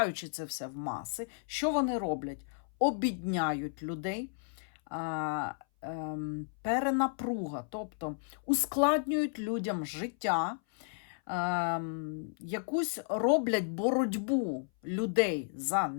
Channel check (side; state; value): right; silent; 56 dB below the other